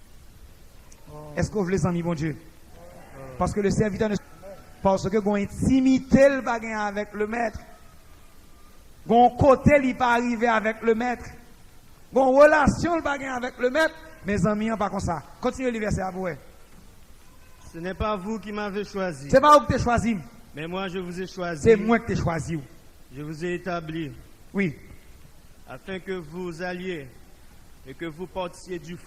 Est-ce que vous voulez les amis, mon Dieu? Parce que le serviteur ne. Parce que vous intimité le bagage avec le maître. Vous côté, il pas arriver avec le maître. Vous relation le bagage avec le maître. Mes amis, pas comme ça. Continuez le verset à vous. Ce n'est pas vous qui m'avez choisi. C'est pas vous qui t'ai choisi. Mais moi, je vous ai choisi. C'est moi qui t'ai choisi. Je vous ai établi. Oui. Afin que vous alliez et que vous portiez du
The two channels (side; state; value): both; identical; correlation 1.00